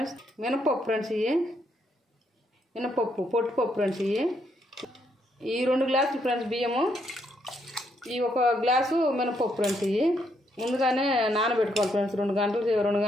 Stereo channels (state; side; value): normal; both; correlation 0.75